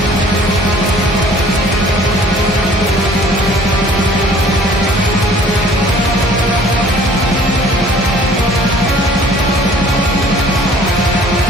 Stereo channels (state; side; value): normal; both; correlation 0.53